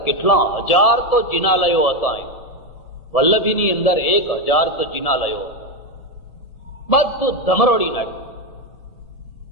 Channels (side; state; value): right; late; 1.7 ms